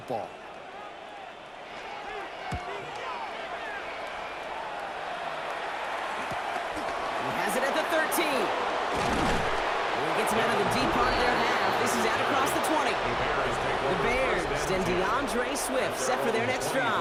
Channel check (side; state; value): both; identical; correlation 1.00